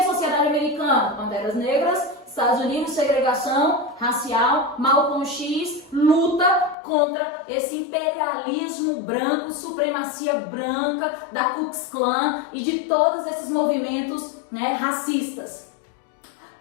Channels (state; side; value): drops out; right; at 6.8 s